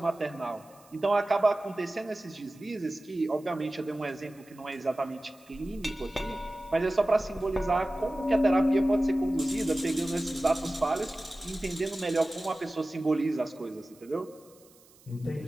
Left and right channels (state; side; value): noise; right; hiss, 27 dB below the sound